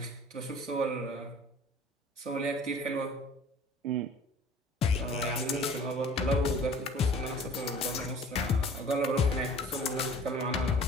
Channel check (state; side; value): normal; both; correlation 0.48